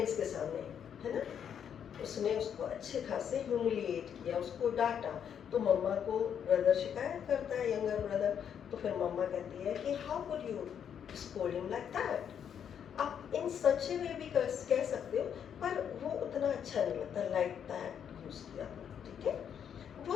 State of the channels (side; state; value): right; quieter; 8.4 dB